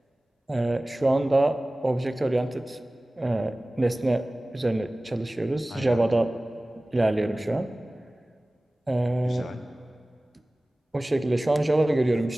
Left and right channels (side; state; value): both; normal; correlation 0.98